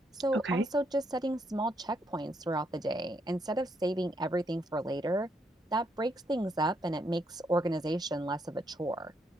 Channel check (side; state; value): both; normal; correlation 0.75